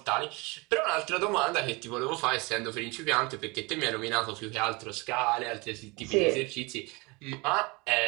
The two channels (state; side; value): quieter; left; 26.3 dB